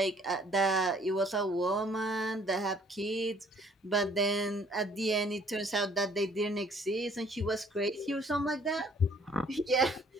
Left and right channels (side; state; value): both; normal; correlation 0.59